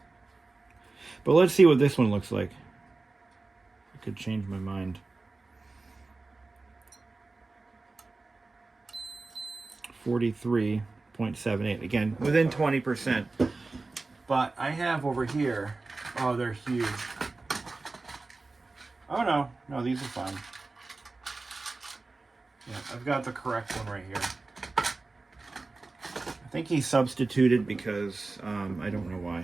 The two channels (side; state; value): left; quieter; 3.5 dB